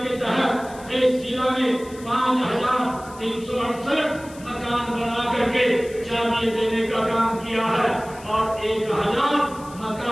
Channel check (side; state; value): left; noise; hiss, 21 dB below the sound